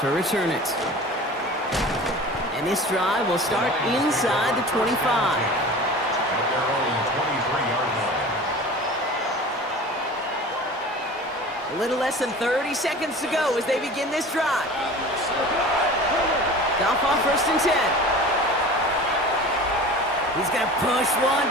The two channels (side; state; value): both; normal; correlation 0.38